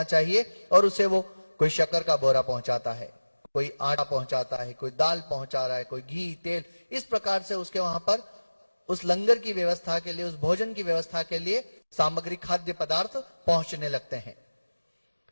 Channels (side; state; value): both; inverted; correlation -1.00